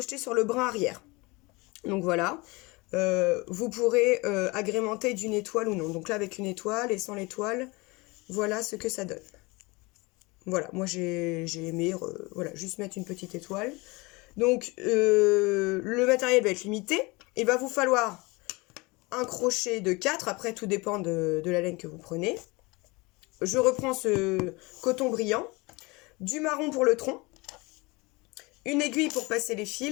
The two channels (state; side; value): quieter; right; 25.0 dB